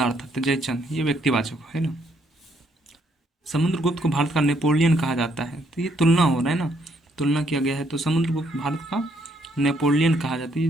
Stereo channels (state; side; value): normal; both; correlation 0.70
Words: था, तो जयचंद ये व्यक्तिवाचक है ना। समुद्रगुप्त को भारत का नेपोलियन कहा जाता है, तो ये तुलना हो रहा है ना, तुलना किया गया है, तो समुद्रगुप्त भारत का नेपोलियन कहा जाता है,